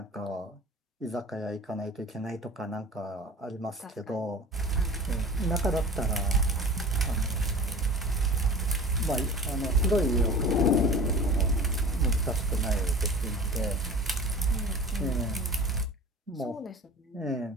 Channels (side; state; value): both; normal; correlation 0.39